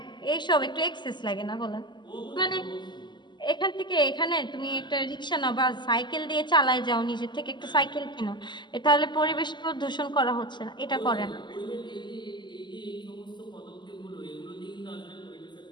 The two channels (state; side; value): late; right; 0.22 ms